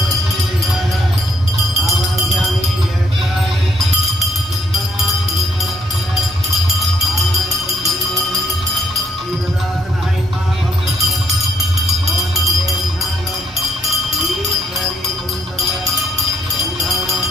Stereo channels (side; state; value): both; normal; correlation 0.71